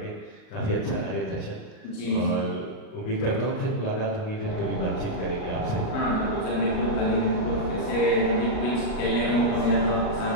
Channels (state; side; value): late; right; 38 ms